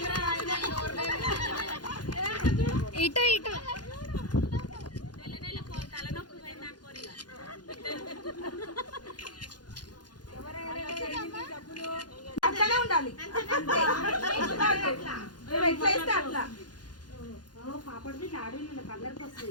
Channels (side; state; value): right; late; 0.70 ms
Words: ఇటు ఇటు అట్లనే ఉండాలి. ఎట్లా అట్లా పాపడి ఆడేళ్ళు కలర్కి